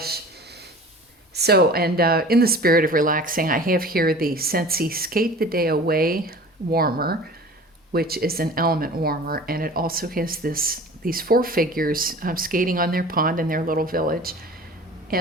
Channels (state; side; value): normal; both; correlation 0.42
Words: So, and in the spirit of relaxing, I have here the Scentsy Skate the Day Away warmer, which is an element warmer. And it also has these four figures skating on their pond in their little village.